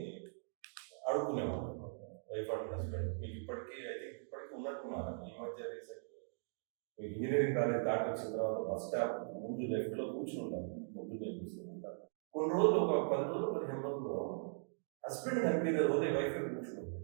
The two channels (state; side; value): silent; left; digital silence